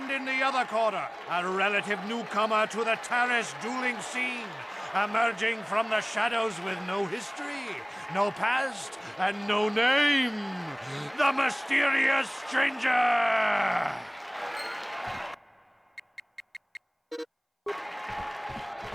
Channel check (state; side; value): identical; both; correlation 1.00